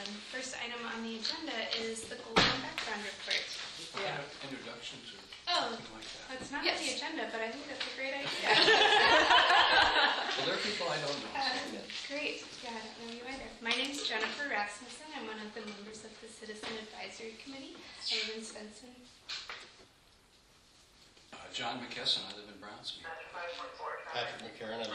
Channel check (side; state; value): both; identical; correlation 1.00